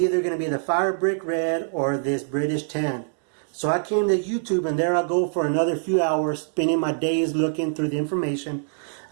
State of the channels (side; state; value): left; silent; digital silence